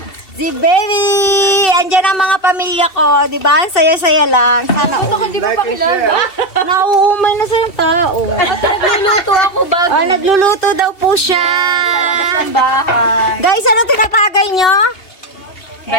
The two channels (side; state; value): right; late; 2.7 ms